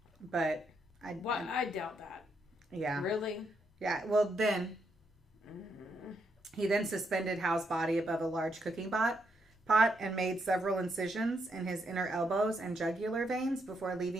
but I doubt that. Yeah. Really? Yeah. Well, then he then suspended Hal's body above a large cooking pot and made several incisions in his inner elbows and jugular veins before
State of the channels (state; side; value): normal; both; correlation 0.78